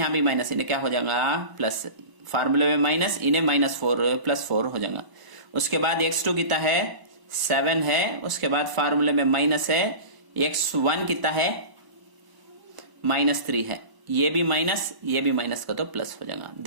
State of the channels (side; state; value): left; late; 1.0 ms